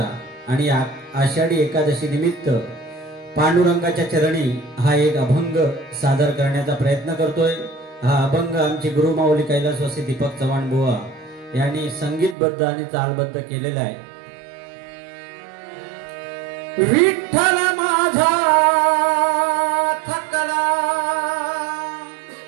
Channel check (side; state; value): left; drops out; at 12.4 s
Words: आणि आषाढी एकादशी निमित्त पांडुरंगाच्या चरणी हा एक अभंग सादर करण्याचा प्रयत्न करतोय। हा अभंग आमचे गुरुमाऊली कैलासवासी दीपक चव्हाण बुवा यांनी संगीतबद्ध आणि तालबद्ध केलेला आहे। विठ्ठल माझा थकला